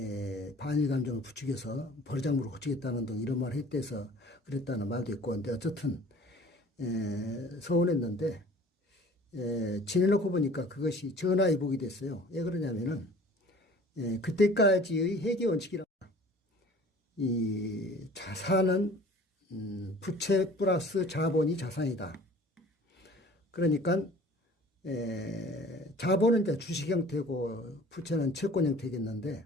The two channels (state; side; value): normal; both; correlation 0.48